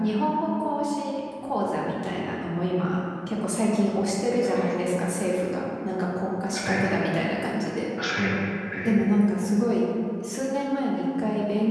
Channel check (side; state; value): both; identical; correlation 1.00